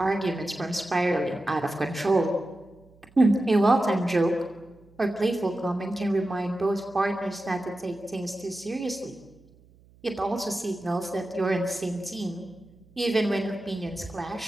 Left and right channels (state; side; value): noise; right; hum, 28 dB below the sound